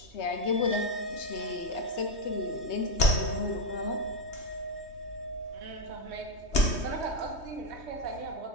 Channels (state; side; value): late; right; 3.2 ms